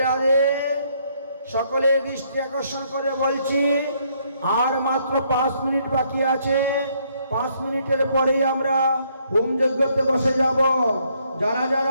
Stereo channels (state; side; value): inverted; both; correlation -0.70